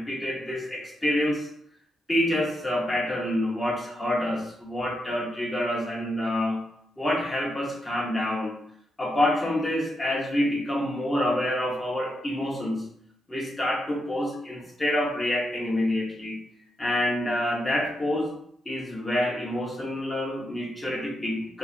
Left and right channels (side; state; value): both; normal; correlation 0.84